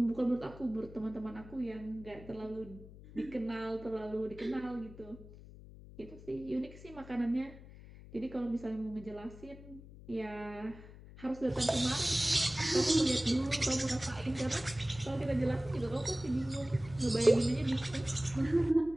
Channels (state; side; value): noise; left; hum, 17 dB below the sound